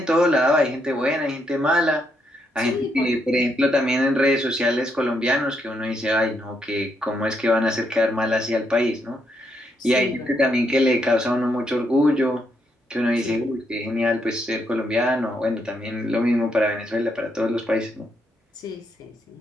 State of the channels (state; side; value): normal; both; correlation 0.77